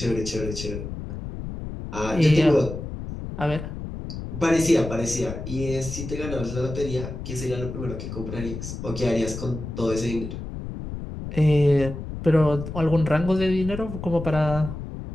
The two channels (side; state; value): left; noise; rumble, 8 dB below the sound